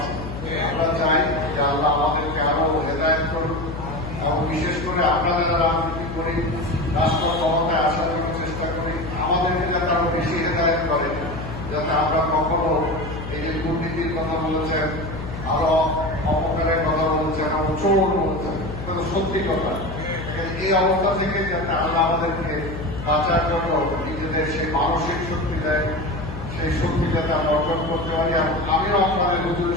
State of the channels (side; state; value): left; noise; hum, 8 dB below the sound